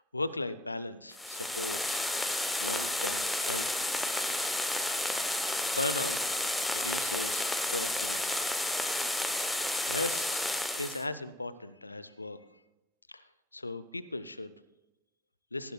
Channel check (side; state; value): both; normal; correlation 0.54